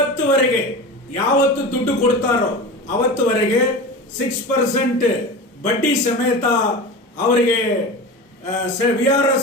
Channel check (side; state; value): both; normal; correlation 0.29